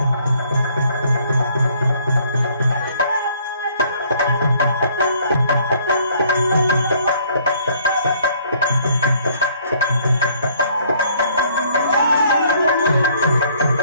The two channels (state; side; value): inverted; both; correlation -0.62